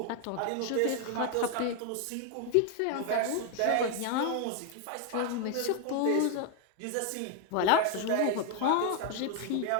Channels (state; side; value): different; both; correlation 0.00